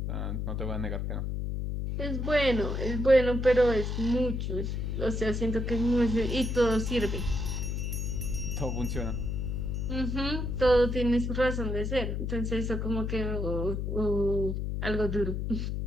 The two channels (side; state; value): left; noise; hum, 2 dB below the sound